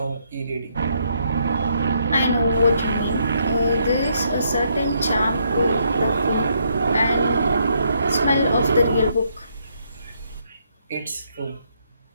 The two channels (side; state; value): both; inverted; correlation -0.74